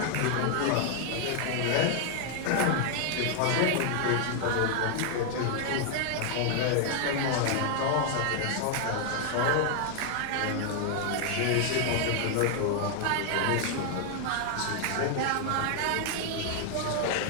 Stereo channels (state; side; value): different; both; correlation 0.00